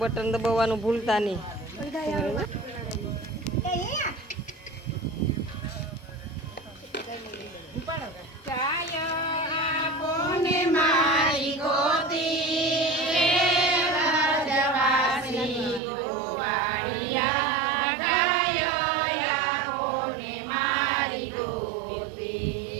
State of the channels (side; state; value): left; drops out; at 15.8 s